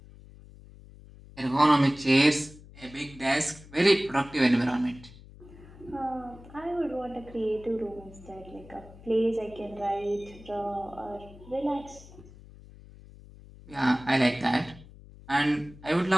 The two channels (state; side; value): noise; left; hum, 20 dB below the sound